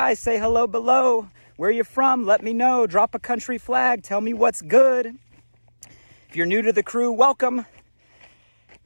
Say hello below. Where you from? Let me know. Drop a country flag. Tell me what's good. If you're new to the crew, welcome.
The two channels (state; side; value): inverted; both; correlation -1.00